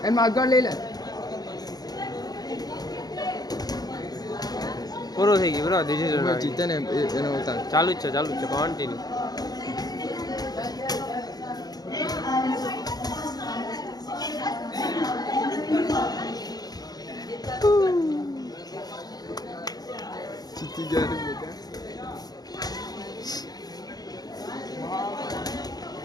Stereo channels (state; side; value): late; right; 0.19 ms